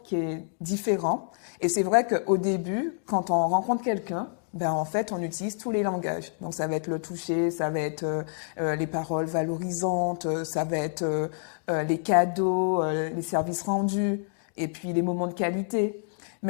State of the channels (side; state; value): right; silent; digital silence